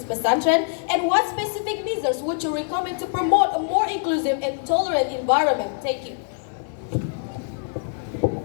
pesantren? And what specific measures would you recommend to promote a more inclusive and tolerant environment? Thank you.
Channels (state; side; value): silent; right; digital silence